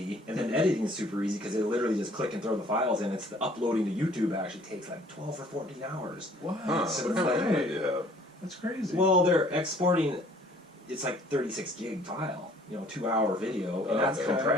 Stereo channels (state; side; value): normal; both; correlation 0.56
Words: and then editing is super easy because they literally just click and throw the files in. It's the uploading to YouTube actually takes like 12 or 14 hours. Wow. Huh, So what kind of idea? That's crazy. Well, they're exporting. It's like 36 gig file, 2-hour video, and that's Okay.